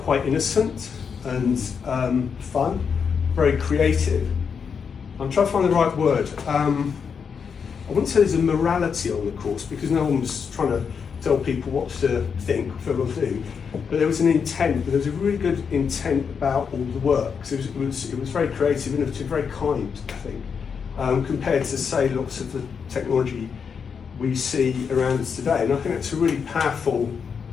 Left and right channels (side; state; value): right; quieter; 6.4 dB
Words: quite innocent and fun, very creative. I'm trying to find the right word. I wouldn't say there's a morality on the course because no one was trying to tell people what to think, what to do. But there was an intent. There was a really good intent about all the work. So it was very creative, innovative, very kind, I think, compared to say lots of the technology we see around us today. And I think that's a really powerful